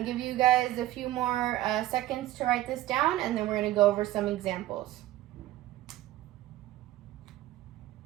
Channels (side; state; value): left; quieter; 15.3 dB